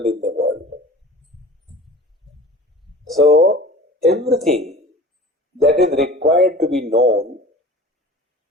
in the world. So everything that is required to be known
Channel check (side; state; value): both; normal; correlation 0.40